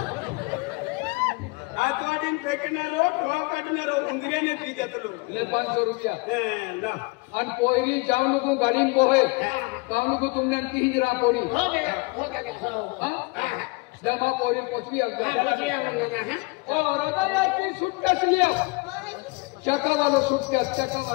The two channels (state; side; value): quieter; right; 27.4 dB